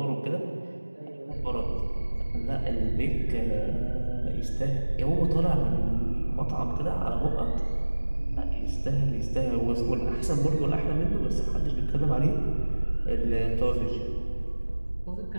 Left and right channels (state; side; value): inverted; both; correlation -1.00